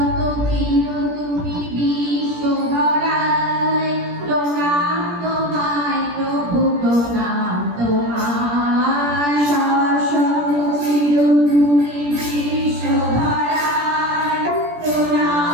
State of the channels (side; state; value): left; late; 17 ms